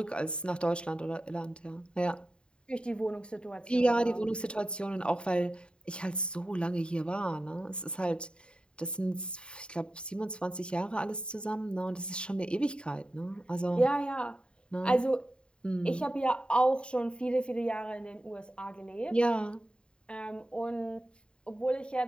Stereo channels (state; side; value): late; right; 0.052 ms